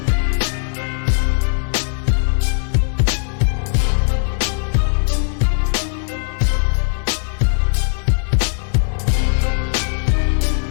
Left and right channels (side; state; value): right; silent; digital silence